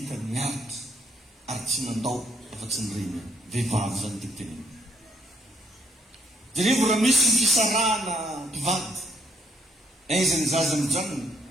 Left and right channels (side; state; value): both; normal; correlation 0.71